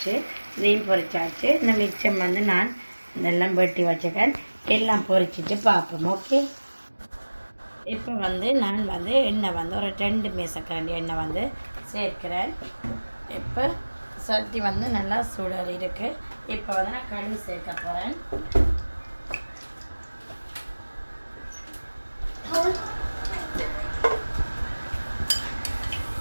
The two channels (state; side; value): inverted; both; correlation -1.00